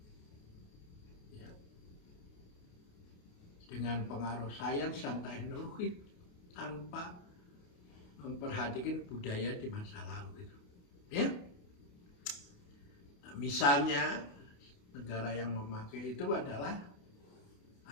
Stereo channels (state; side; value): late; right; 28 ms